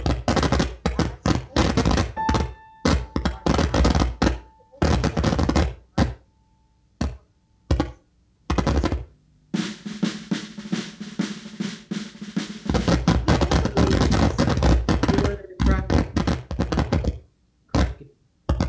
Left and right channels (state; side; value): identical; both; correlation 1.00